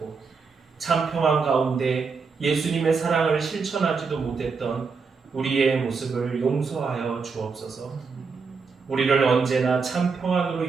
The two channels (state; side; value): quieter; left; 5.0 dB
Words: 참 평안 가운데 예수님의 사랑을 실천하지도 못했던 우리의 모습을 용서하여 주옵소서. 우리를 언제나 참 평안으로